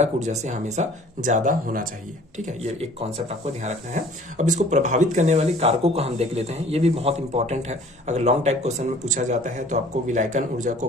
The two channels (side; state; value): both; normal; correlation 0.51